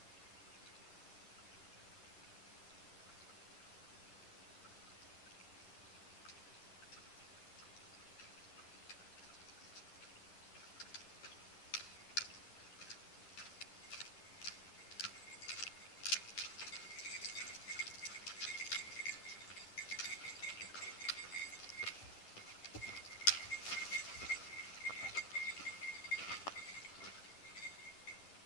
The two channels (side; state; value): right; late; 10 ms